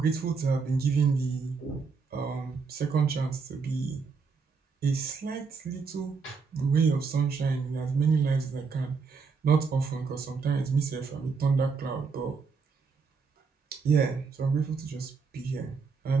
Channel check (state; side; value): quieter; left; 5.0 dB